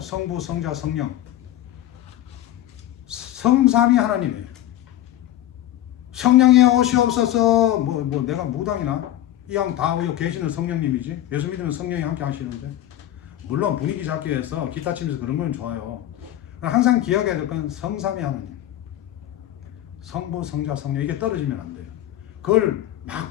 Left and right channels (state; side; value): quieter; right; 13.1 dB